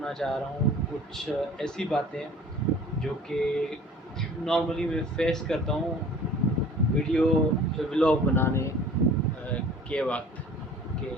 चाह रहा हूँ कुछ ऐसी बातें जो कि नॉर्मली मैं फेस करता हूँ वीडियो व्लॉग बनाने के वक्त के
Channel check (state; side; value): normal; both; correlation 0.47